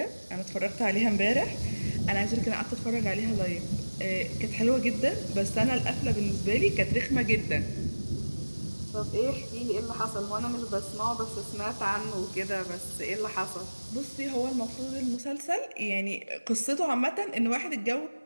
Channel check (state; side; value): inverted; both; correlation -1.00